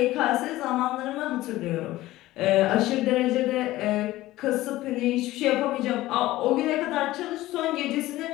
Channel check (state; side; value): quieter; right; 16.7 dB